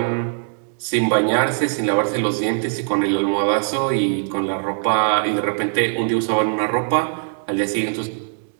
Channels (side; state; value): left; silent; digital silence